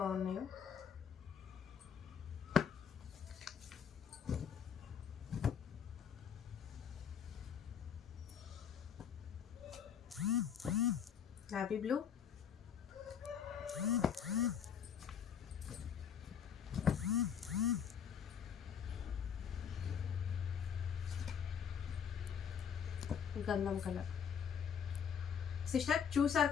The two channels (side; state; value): right; quieter; 7.7 dB